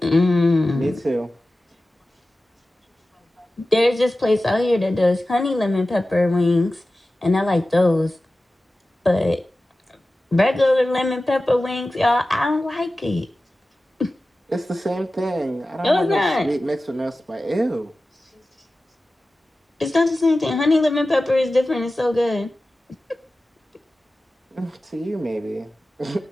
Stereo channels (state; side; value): normal; both; correlation 0.95